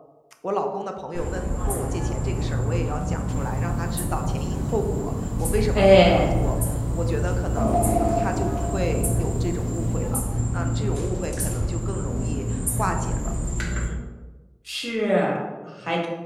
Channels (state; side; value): identical; both; correlation 1.00